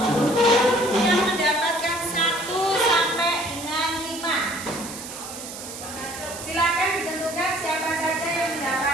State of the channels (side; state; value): right; noise; hiss, 11 dB below the sound